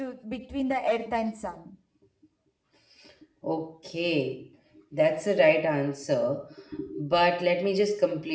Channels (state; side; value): identical; both; correlation 1.00